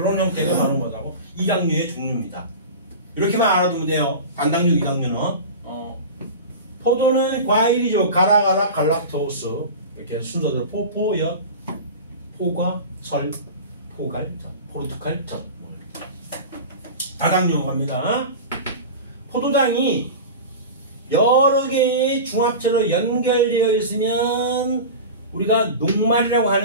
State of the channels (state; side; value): inverted; both; correlation -0.30